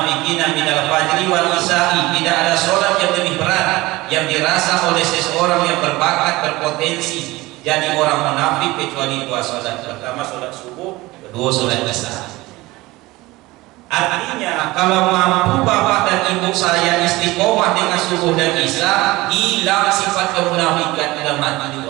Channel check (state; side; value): quieter; left; 20.1 dB